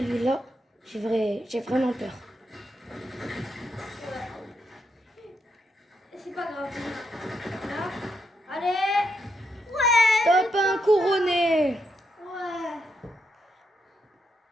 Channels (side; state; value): both; normal; correlation 0.81